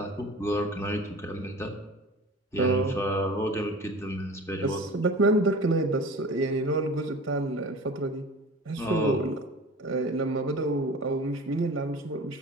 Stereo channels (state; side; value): normal; both; correlation 0.39